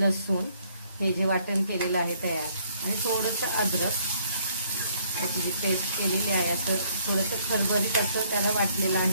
हे जे वाटण केलेलं आहे तयार आणि थोडंसं अद्रक याची जी पेस्ट केलेली आहे असं थोडंसं खरबरीत असं त्याला वाटलेलं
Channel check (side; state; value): both; inverted; correlation -0.65